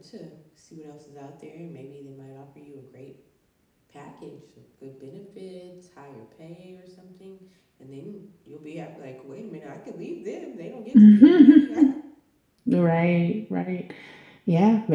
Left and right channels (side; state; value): both; identical; correlation 1.00